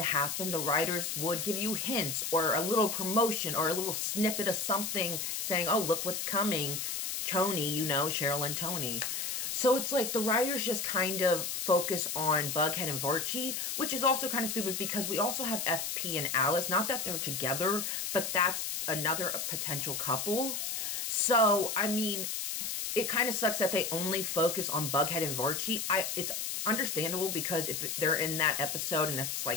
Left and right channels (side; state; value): left; noise; hiss, 3 dB below the sound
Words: happen, the writers would give you hints or a little promotion or a little snippet of something saying, oh, look what's coming. Tony, you know, Cheryl and Tony. So it's like the writers just kind of focus on Bughead and Barchi, which is also kind of stupid because we also have FP and Alice. Not that they're together, but that's another potential couple. So, I mean, it kind of sucks that they only focus on Bughead and Barchi. It's understandable because if they're in that episode and it's